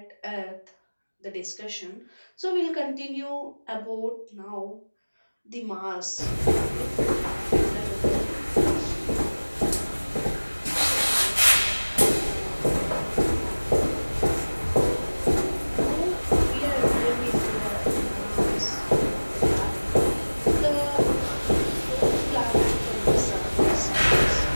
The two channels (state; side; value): inverted; both; correlation -1.00